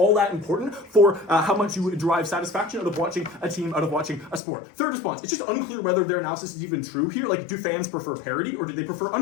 that important for how much you derive satisfaction out of watching a team, out of watching a sport. Third response, it's just unclear whether their analysis is even true here. Like, do fans prefer parity? parity, or do they prefer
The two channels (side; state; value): right; drops out; at 4.4 s